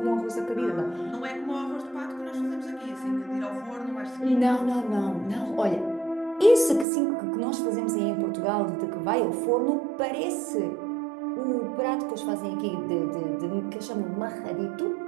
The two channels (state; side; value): drops out; left; at 6.9 s